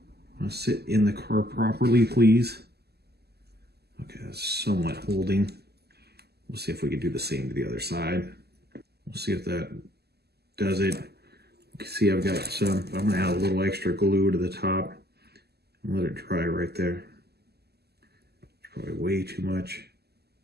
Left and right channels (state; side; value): late; left; 0.47 ms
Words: Want to sit in the car properly, please. Okay, that's somewhat holding. We'll see if we can do the same to the other side. We'll see if that does it. You can see I've got some, I'm gonna add a little extra glue to the top and let it dry right there. It's probably way too much.